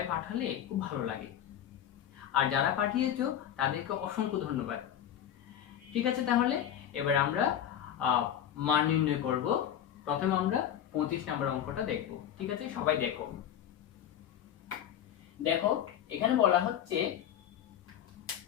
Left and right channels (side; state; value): right; quieter; 10.3 dB